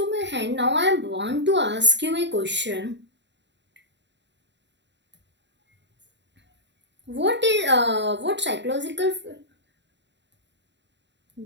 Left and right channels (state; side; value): late; left; 0.52 ms